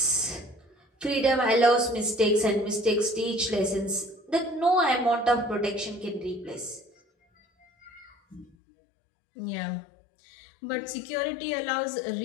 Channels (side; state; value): right; drops out; at 8.5 s